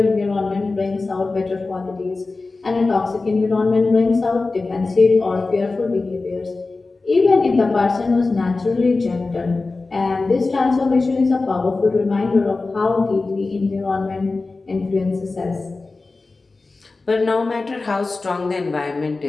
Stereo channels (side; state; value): right; quieter; 3.6 dB